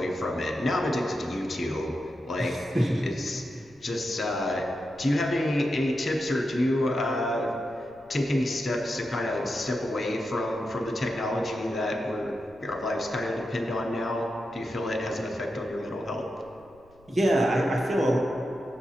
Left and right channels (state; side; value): noise; left; rumble, 28 dB below the sound